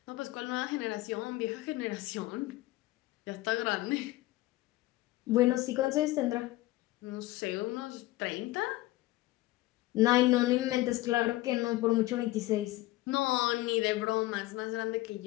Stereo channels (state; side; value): quieter; right; 18.0 dB